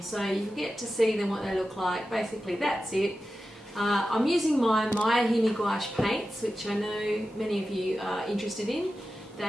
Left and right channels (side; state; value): both; normal; correlation 0.93